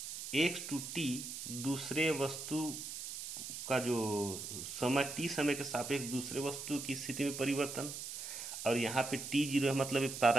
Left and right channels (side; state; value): right; noise; hiss, 7 dB below the sound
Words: X two t दूसरे वस्तु का जो समय टी समय के सापेक्ष दूसरे वस्तु की स्थिति में परिवर्तन, और यहाँ पे टी जीरो है मतलब